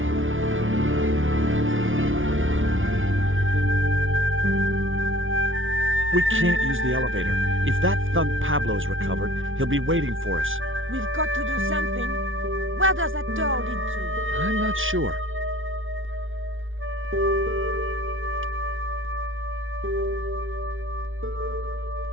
We can't use the elevator. If that thug Pablo's recovered, he'll be waiting for us. We've got to do something. Where does that door lead to? I'm not sure.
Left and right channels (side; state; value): left; late; 0.57 ms